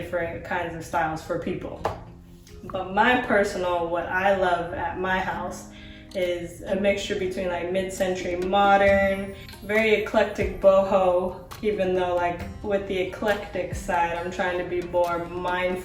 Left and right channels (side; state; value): both; identical; correlation 1.00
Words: kinds of styles for people. But my personal, what I love at my house is a mixture between mid-century modern, very eclectic boho, even though with the eclectic side, I'm trying to be more